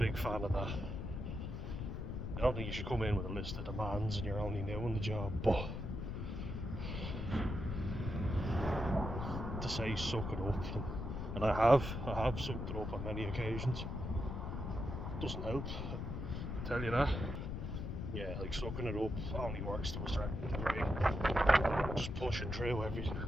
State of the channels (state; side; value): noise; left; rumble, 4 dB below the sound